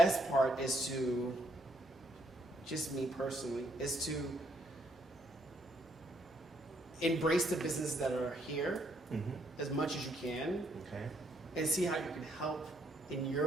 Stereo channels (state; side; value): normal; both; correlation 0.71